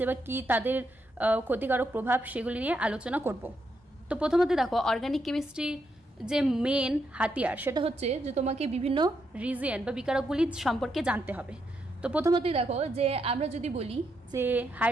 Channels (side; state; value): both; normal; correlation 0.80